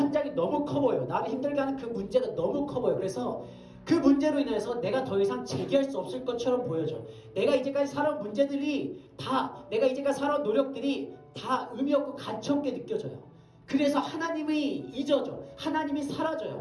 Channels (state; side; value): identical; both; correlation 1.00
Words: 너무 커 보여요. 나를 힘들게 하는 그 문제가 너무 커 보여요. 그래서 그 문제로 인해서 내가 더 이상 제기할 수 없을 것처럼 보여져. 내가 이제까지 살아온 문제들이 다, 내가 이제까지 살아온 노력들이 다 의미 없고 가치 없게 느껴져요. 그래서 하나님이 잊어져. 하나님이